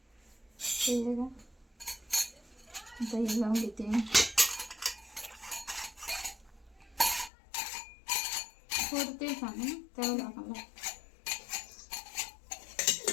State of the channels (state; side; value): drops out; right; at 7.3 s